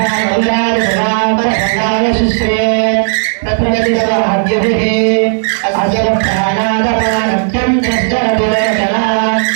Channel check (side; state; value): left; silent; digital silence